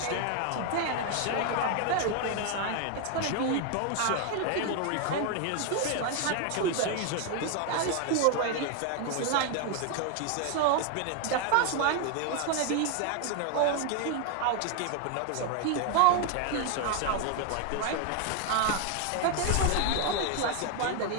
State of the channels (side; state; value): both; different; correlation 0.01